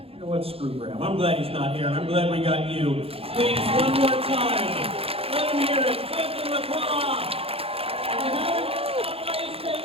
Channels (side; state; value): left; late; 0.28 ms